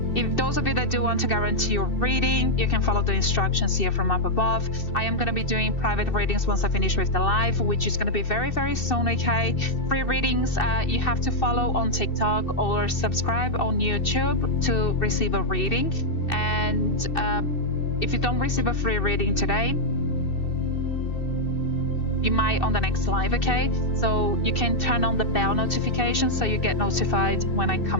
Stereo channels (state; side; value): late; right; 2.7 ms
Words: If those of you that do want to guarantee your reading, you can follow the instructions here from up above. I am going to be doing private readings once I finish with the live, which is going to be very, very soon, okay? Free readings, you have to follow on TikTok or subscribe on YouTube to receive a reading. And if you don't receive a free reading today, you might on the next live, okay? So you can turn on the bell notification so you get notified when I